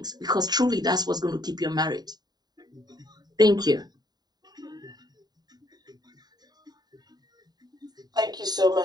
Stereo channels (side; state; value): left; late; 0.20 ms